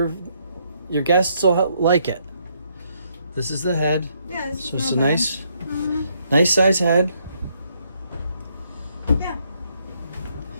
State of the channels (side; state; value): both; inverted; correlation -0.73